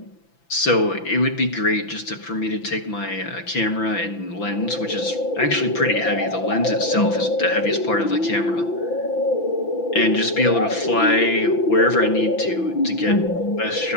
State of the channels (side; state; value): right; late; 5.9 ms